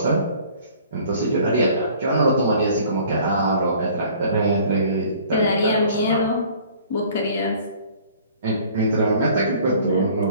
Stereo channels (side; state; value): both; inverted; correlation -0.52